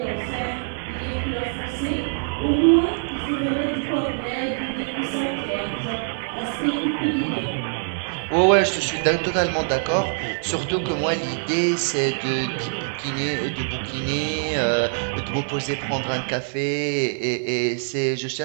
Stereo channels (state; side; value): silent; left; 63 dB below the other